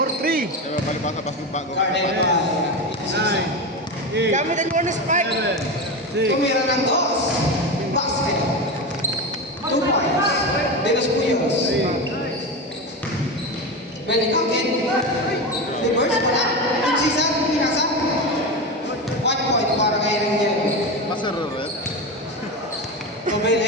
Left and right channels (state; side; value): normal; both; correlation 0.20